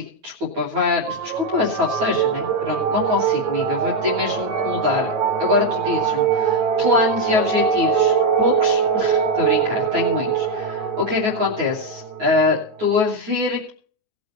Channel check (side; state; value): left; late; 9.3 ms